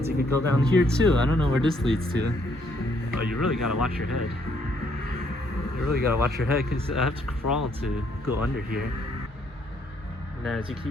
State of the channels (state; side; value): normal; both; correlation 0.69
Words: You could go down here too. I don't know where this leads to. Oh, you really gotta watch your head. You really gotta watch your head, because I have to crawl to go under here. And then as you